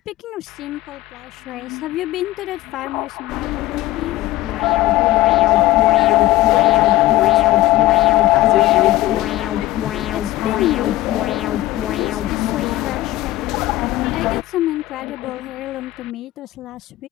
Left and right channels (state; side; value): quieter; right; 16.8 dB